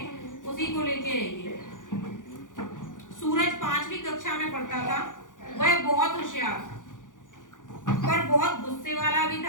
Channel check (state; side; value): late; right; 0.88 ms